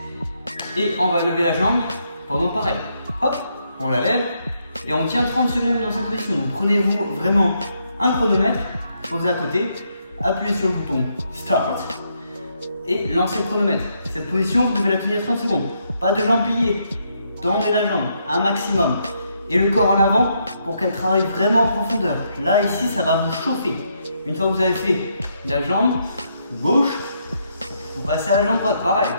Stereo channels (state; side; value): inverted; both; correlation -0.76